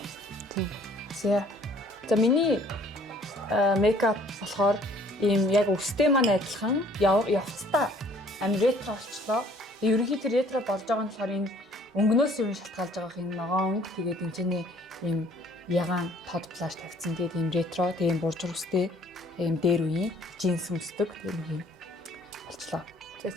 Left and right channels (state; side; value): normal; both; correlation 0.57